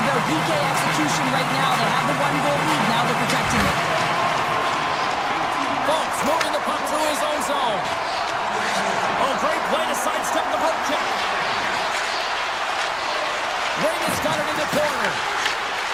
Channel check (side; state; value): left; noise; rumble, 25 dB below the sound